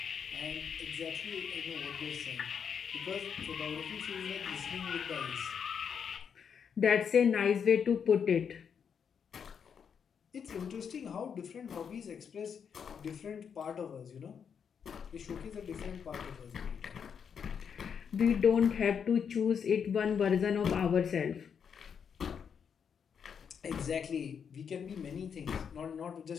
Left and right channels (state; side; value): quieter; right; 7.1 dB